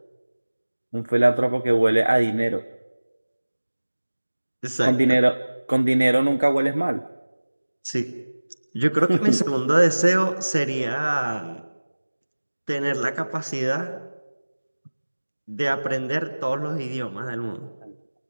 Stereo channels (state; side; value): inverted; both; correlation -1.00